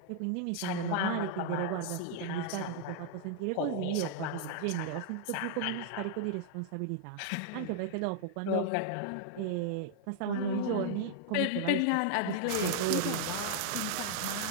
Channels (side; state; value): both; different; correlation -0.01